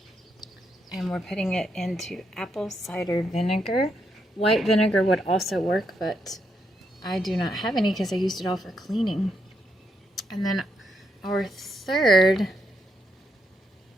And we're putting it into apple cider vinegar. White vinegar would also work, but I do not have any because I used it all for cleaning. And then our third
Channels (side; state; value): both; normal; correlation 0.79